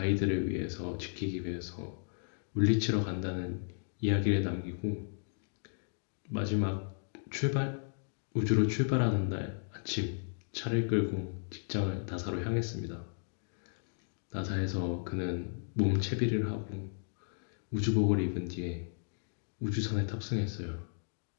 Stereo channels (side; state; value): right; silent; digital silence